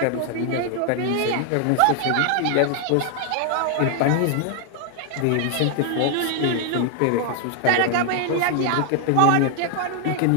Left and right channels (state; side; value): different; both; correlation 0.00